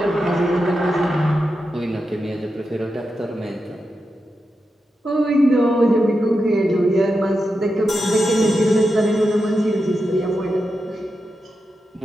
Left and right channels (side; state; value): both; normal; correlation 0.88